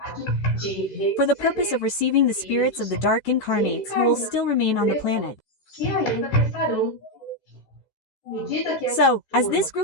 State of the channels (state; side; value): late; right; 14 ms